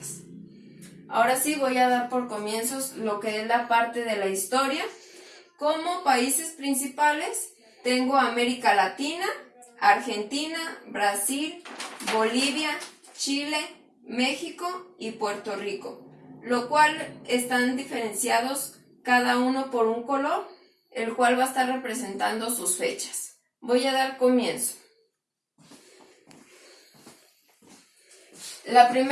Ahora sí voy a dar por comienzos lo que es la parte de la historia. Como países principales tengo América Latina, Argentina, Brasil, Bolivia, Chile, México y Puerto Rico, lo cual están diferenciados cada uno por un color, el cual va a estar representando sus fechas. Voy a dar comienzo. La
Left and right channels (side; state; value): both; identical; correlation 1.00